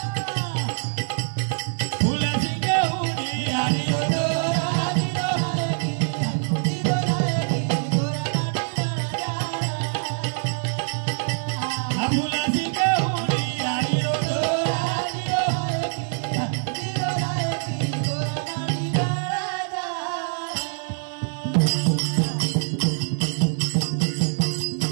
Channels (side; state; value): left; silent; 57 dB below the other